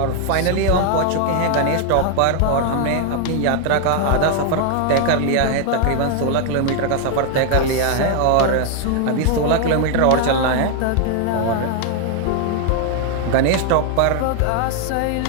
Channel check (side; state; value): both; different; correlation 0.00